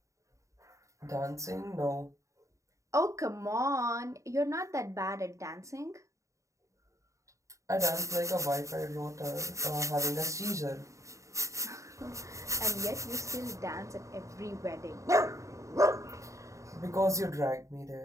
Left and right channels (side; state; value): left; late; 0.15 ms